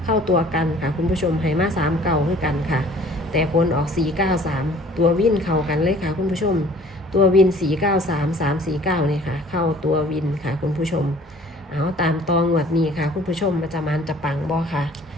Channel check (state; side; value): normal; both; correlation 0.52